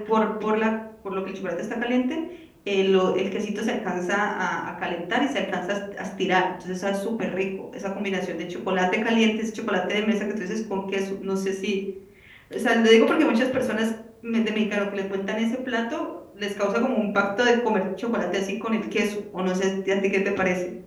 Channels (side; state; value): both; identical; correlation 1.00